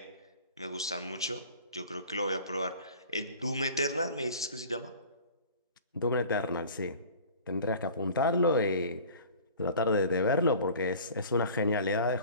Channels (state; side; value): inverted; both; correlation -0.44